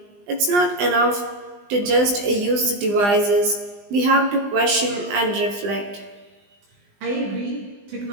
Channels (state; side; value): late; left; 20 ms